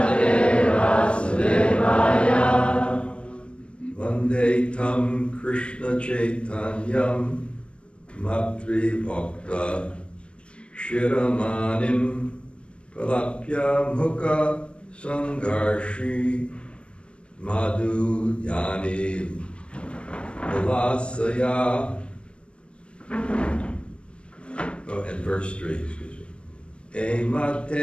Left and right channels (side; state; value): right; late; 0.058 ms